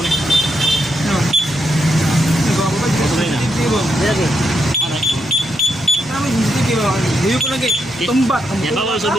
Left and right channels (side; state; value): both; normal; correlation 0.80